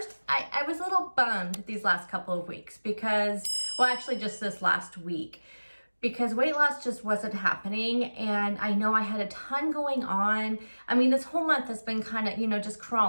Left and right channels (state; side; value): inverted; both; correlation -1.00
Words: I was a little bummed these last couple of weeks because, well, actually just this last week, because weight loss just wasn't happening. And I know I had a ton going on. I mean, this whole month has been kind of, just